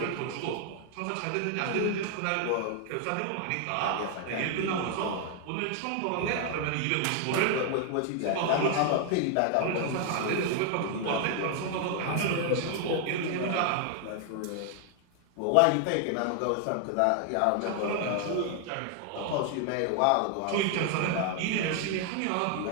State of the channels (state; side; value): different; both; correlation 0.00